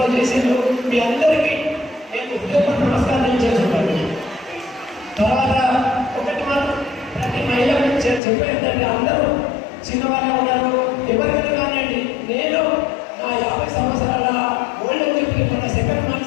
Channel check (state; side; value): drops out; right; at 8.2 s